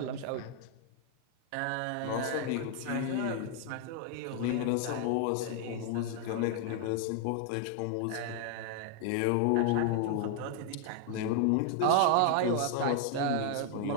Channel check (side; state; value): both; different; correlation 0.00